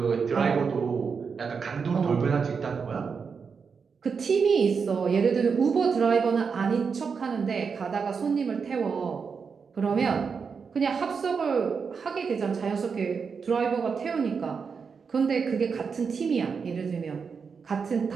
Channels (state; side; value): quieter; left; 5.7 dB